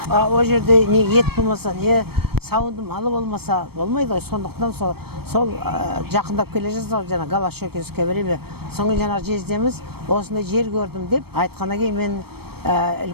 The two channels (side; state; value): left; late; 0.96 ms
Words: О жерде не ет болмаса, не сауынды малы болмаса болмайды ғой. Сондықтан сол жақындап келе жатыр жана Голощекинское время. Соңғы жана жездеміз осындай жер көрдім деп айтқаннан кейін мен